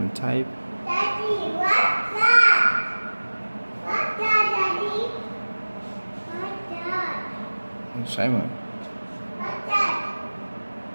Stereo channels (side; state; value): both; inverted; correlation -1.00